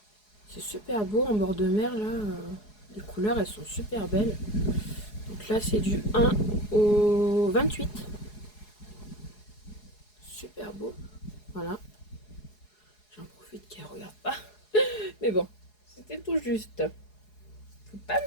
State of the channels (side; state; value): right; late; 4.8 ms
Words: C'est super beau en bord de mer là. Les couleurs elles sont super belles. Donc là c'est du 1 au 28. Super beau. Voilà. J'en profite qu'elle regarde pas. Mais bon, c'était tout juste. Faut pas